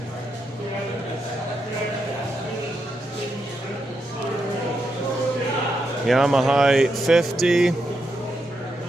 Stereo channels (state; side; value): normal; both; correlation 0.83